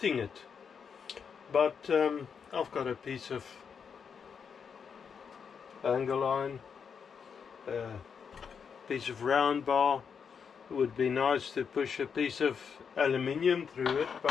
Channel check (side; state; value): right; quieter; 6.6 dB